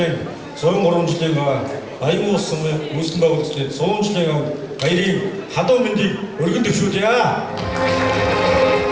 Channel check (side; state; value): both; identical; correlation 1.00